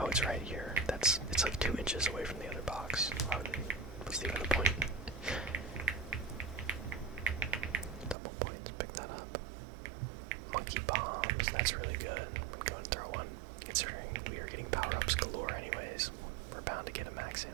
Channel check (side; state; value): left; drops out; at 8.2 s